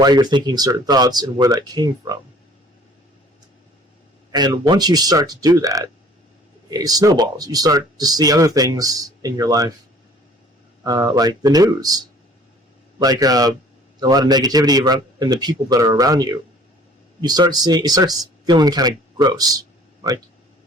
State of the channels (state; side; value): normal; both; correlation 0.52